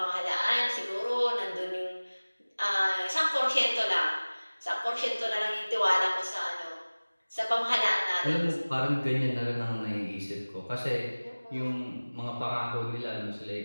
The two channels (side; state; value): both; inverted; correlation -1.00